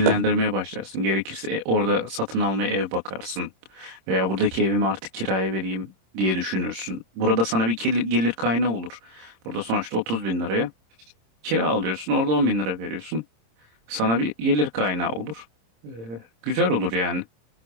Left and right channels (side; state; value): left; late; 26 ms